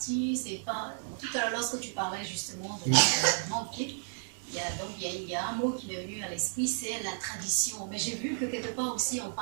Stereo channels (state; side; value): silent; left; digital silence